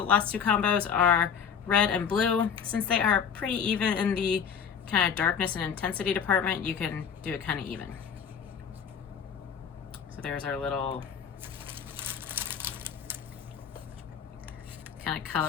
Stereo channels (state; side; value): quieter; right; 7.4 dB